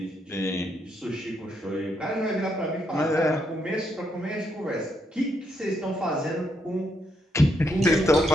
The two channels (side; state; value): both; normal; correlation 0.77